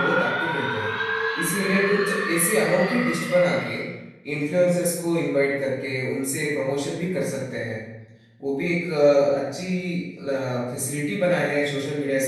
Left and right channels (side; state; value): both; identical; correlation 1.00